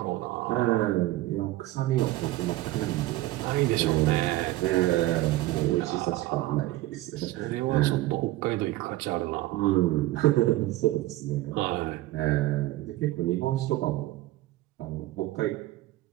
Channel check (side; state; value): left; quieter; 17.1 dB